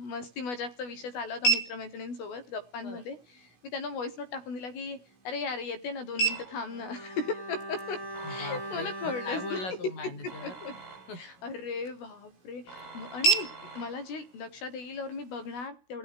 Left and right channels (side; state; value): right; late; 16 ms